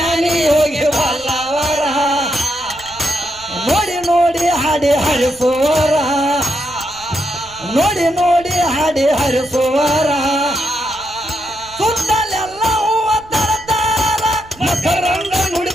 ಹೋಗಿ ಬಲ್ಲವರ ನೋಡಿ ನೋಡಿ ಹಾಡಿ ಹರಿಸೋರ ನೋಡಿ ನೋಡಿ ಹಾಡಿ ಹರಿಸುವರ ಸುತ್ತಲೆಲ್ಲ ಹೂವ ತರತಾರ ಮಕರಂಗ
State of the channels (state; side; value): noise; right; rumble, 24 dB below the sound